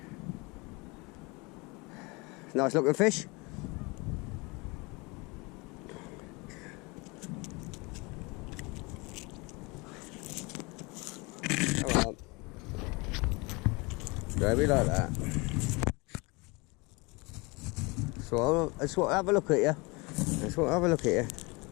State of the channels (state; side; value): quieter; right; 26.8 dB